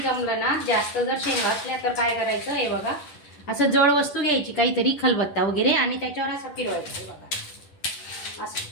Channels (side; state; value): right; late; 11 ms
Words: ना, जास्त जर शेंगा असल्या तर काय करायचं, हे बघा असं जड वस्तू घ्यायची, काहीतरी खलबत्ता वगैरे, आणि त्याच्यावर असं फिरवायचं. हे बघा असं.